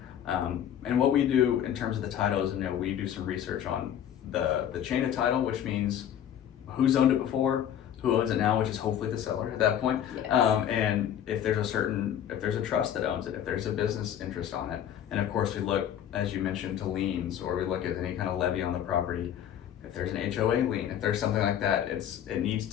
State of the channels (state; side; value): quieter; right; 10.1 dB